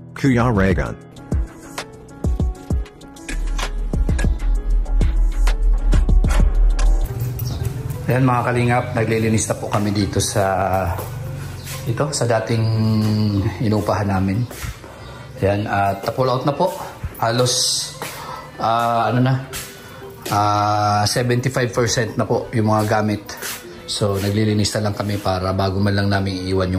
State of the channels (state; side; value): identical; both; correlation 1.00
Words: Kuya Raygun. Ayan mga kalingap, naglilinis na po kami dito sa dating inupahan namin. Ayan, at pull out na po. Halos 75% na po yung mga gamit. So naglilinis na lang kami para bago man lang namin iiwan